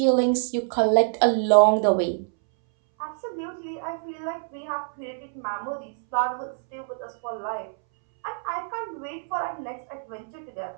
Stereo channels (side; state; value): left; silent; 61 dB below the other